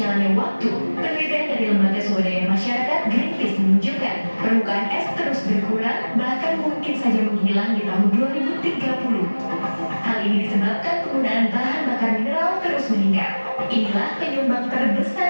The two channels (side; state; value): both; inverted; correlation -1.00